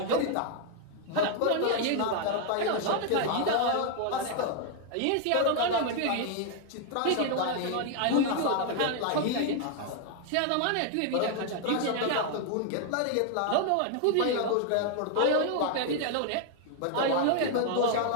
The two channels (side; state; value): both; different; correlation 0.00